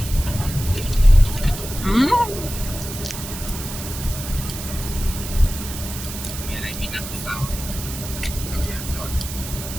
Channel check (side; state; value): right; noise; hiss, 9 dB below the sound